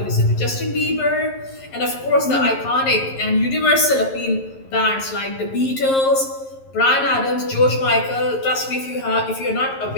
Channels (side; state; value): right; late; 11 ms